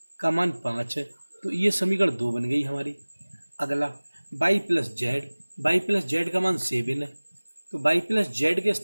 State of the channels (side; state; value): both; inverted; correlation -1.00